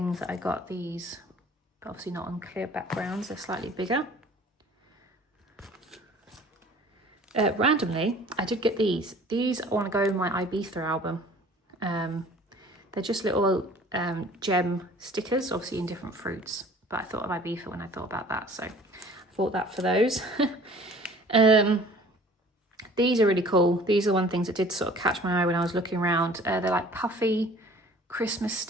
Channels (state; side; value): normal; both; correlation 0.49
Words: that I got. These, but obviously not on clear backgrounds. They're slightly bigger. Randomly, I did get these. These I want to go in my Ibiza album. They're just little gem stickers, obviously in different fruits. But I thought of Ibiza when I thought about that, so I bought that for those. These are really cool. These are one things that did sort of catch my eye when I was looking around. They're like puffy Christmas